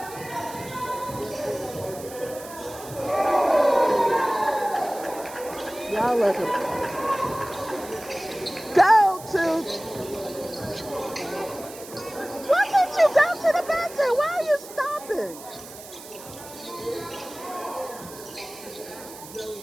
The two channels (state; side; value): noise; right; hiss, 16 dB below the sound